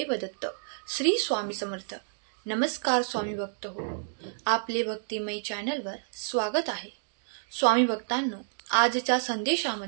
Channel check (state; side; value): silent; left; digital silence